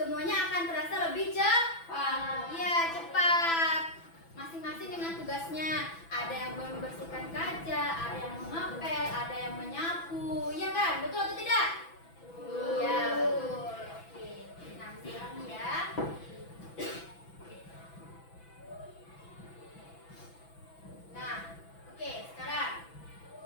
akan terasa lebih cepat. Iya, cepat. Masing-masing dengan tugasnya. Ada yang membersihkan kaca, ada yang mengepel, ada yang menyapu. Iya kan? Betul atau tidak? Iya, betul. Oke. Nah, sekarang ya. Nah, oke, sekarang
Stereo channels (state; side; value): late; right; 6.0 ms